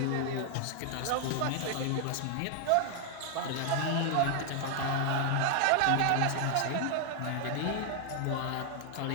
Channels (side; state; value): both; different; correlation 0.00